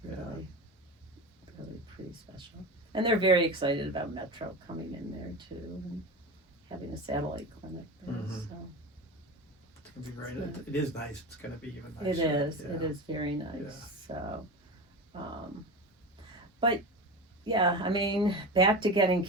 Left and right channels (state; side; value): normal; both; correlation 0.26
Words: Really pretty special. And they're very excited about Metro coming in there too, and having a satellite clinic there. So it's gonna be great. It is nice. It's gonna be even nicer. It is. It is very nice. So, but yeah, I mean, back to getting